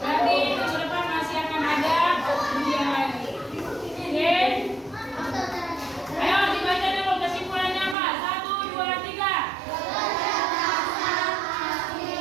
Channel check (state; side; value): drops out; left; at 8.0 s